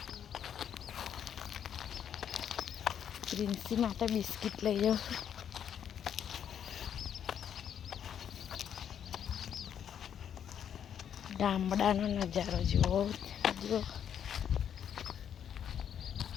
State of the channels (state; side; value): quieter; right; 8.9 dB